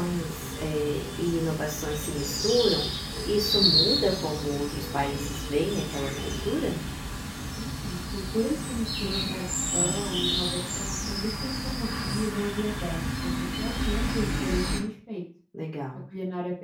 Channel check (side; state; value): both; identical; correlation 1.00